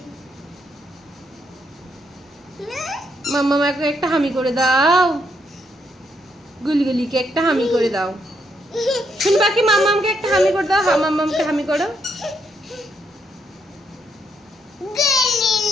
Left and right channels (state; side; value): normal; both; correlation 0.76